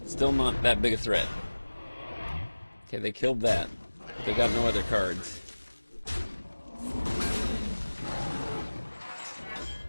still not that big a threat. Okay, they killed that. But they got no other cards.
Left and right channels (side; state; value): both; inverted; correlation -1.00